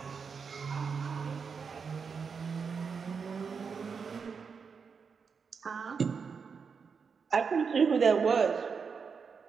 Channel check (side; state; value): left; quieter; 5.8 dB